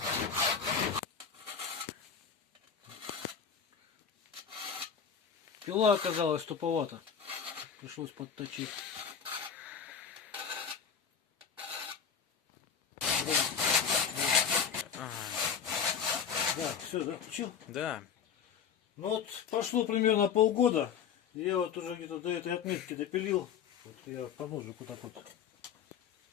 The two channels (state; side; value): quieter; right; 7.1 dB